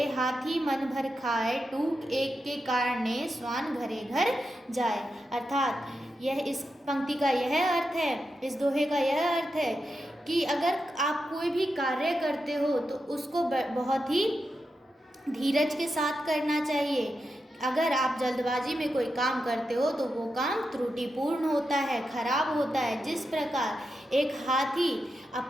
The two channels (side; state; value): both; normal; correlation 0.88